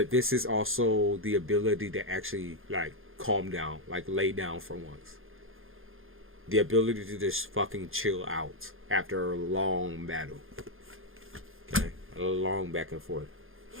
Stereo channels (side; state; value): left; late; 0.60 ms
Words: this is also the ability to actually like calm down, like lay down for once. The ability to just fucking chill out after a long battle. Okay, a long back and forth.